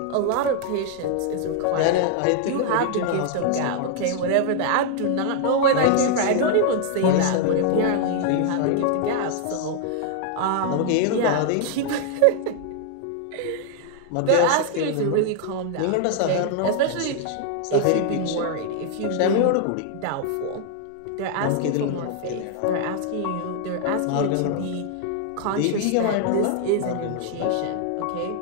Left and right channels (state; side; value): different; both; correlation 0.00